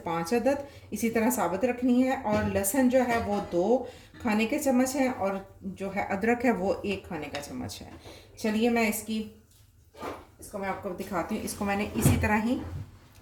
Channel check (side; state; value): both; identical; correlation 1.00